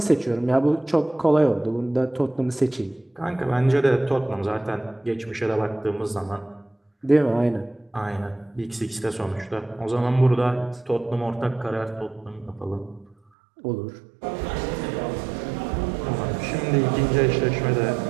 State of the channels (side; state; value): left; drops out; at 13.2 s